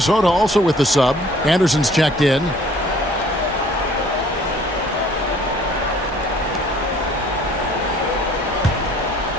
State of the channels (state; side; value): normal; both; correlation 0.55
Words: also with the sub. Anderson's checked in.